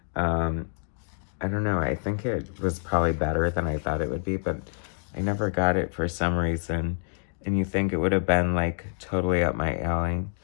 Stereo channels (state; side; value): silent; right; digital silence